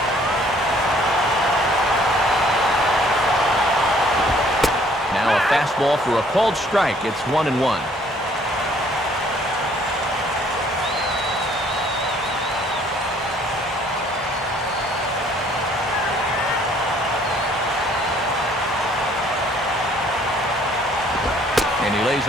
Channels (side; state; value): both; normal; correlation 0.60